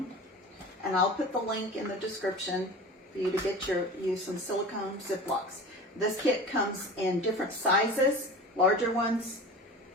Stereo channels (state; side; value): normal; both; correlation 0.35